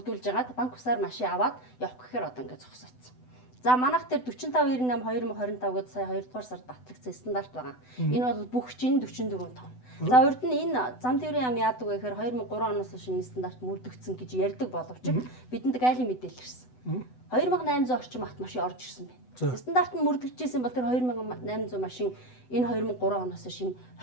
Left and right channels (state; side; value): late; right; 8.0 ms